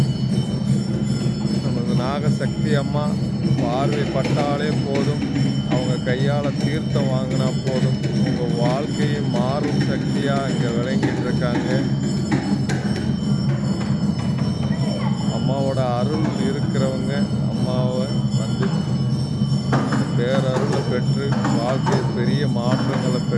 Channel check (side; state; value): both; identical; correlation 1.00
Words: நமது நாகசக்தி அம்மா பார்வை பட்டாலே போதும், அவங்க கையால் தீர்த்தம் வாங்கினா போதும், உங்கள் வாழ்க்கையை மாறும் சக்தியாக இங்கே விளங்கிட்டு இருக்காங்க. அம்மாவோட அருள் இருக்கிறவங்க அம்மாவை வந்து பேரருளை பெற்று வாழ்க்கையில் பெரிய மாற்றங்களை